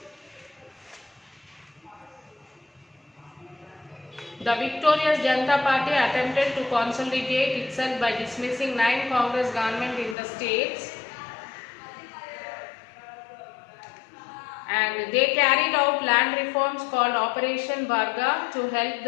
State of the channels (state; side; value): drops out; right; at 10.2 s